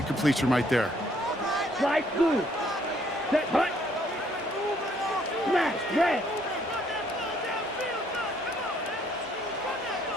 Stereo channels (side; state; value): both; normal; correlation 0.66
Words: completion right there. Slide blue. Set, hut. Smash, red.